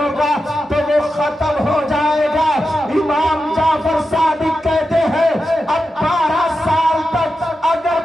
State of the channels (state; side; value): normal; both; correlation 0.90